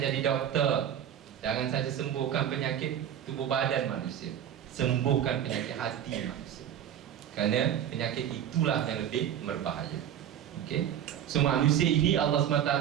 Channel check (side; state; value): left; quieter; 10.0 dB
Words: doktor. Jangan saja sembuhkan penyakit tubuh badan manusia, sembuhkan penyakit hati manusia. Kerana penyakit itulah yang lebih berbahaya. Okey. So manusia ini Allah SWT